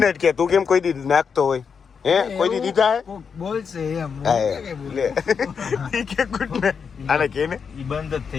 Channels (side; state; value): right; quieter; 6.2 dB